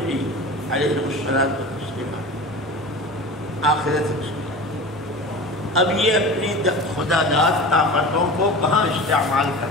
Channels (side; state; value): both; normal; correlation 0.34